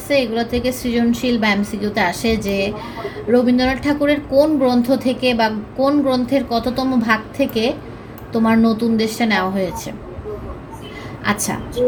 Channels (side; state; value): both; identical; correlation 1.00